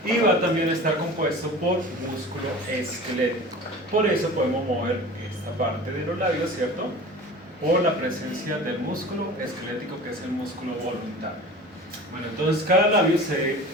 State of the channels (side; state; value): both; normal; correlation 0.38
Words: Y va también a estar compuesto por músculo esquelético. Por eso podemos mover esta parte de los labios, ¿cierto? Por la presencia del músculo esquelético, que es el músculo voluntario. Bueno, entonces cada labio